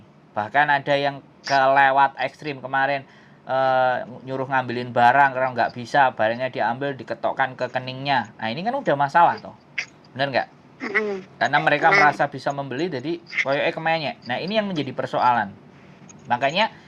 bahkan ada yang kelewat ekstrim kemarin, nyuruh ngambilin barang karena nggak bisa, barangnya diambil, diketokkan ke keningnya. Nah ini kan udah masalah toh, bener nggak? Karena mereka merasa bisa membeli, jadi koyoknya kemenyek. Nah ini yang menjadi persoalan. Makanya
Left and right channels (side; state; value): both; identical; correlation 1.00